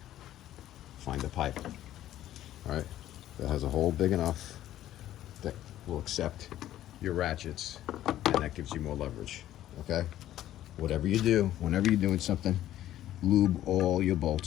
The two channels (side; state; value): right; quieter; 13.0 dB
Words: find a pipe, all right, that has a hole big enough that will accept your ratchets, and that gives you more leverage, okay? Whatever you do, whenever you're doing something, lube all your